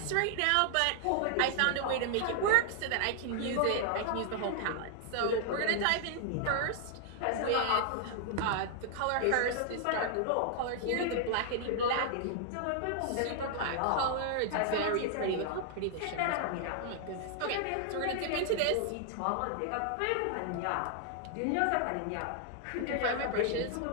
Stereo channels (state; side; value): different; both; correlation -0.01